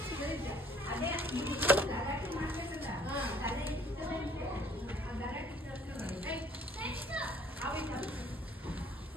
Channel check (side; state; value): both; normal; correlation 0.58